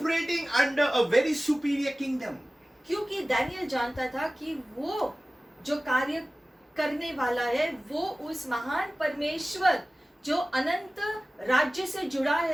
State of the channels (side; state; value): both; normal; correlation 0.97